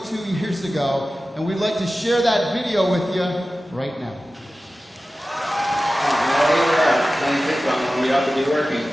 years ago. And we'd like to share that video with you right now. Playing ping pong when we ought to be working.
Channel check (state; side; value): normal; both; correlation 0.95